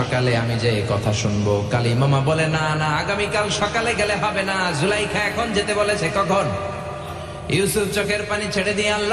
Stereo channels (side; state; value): both; identical; correlation 1.00